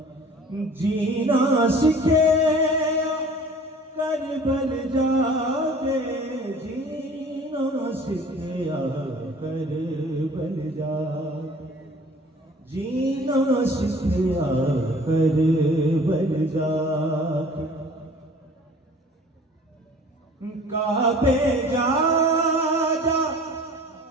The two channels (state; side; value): normal; both; correlation 0.48